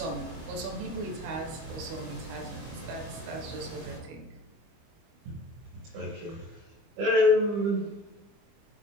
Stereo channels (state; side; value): late; left; 25 ms